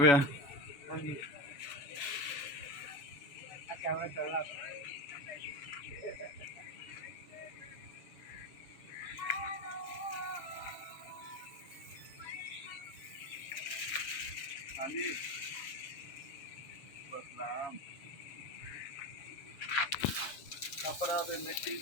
ਹਾਂਜੀ ਆ ਕੈਮਰਾ ਚੱਲਦਾ ਹਾਂਜੀ ਬਸਲਾਮ ਕਪੜਾ ਤੇ ਮਿੱਟੀ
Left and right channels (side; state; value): right; late; 7.1 ms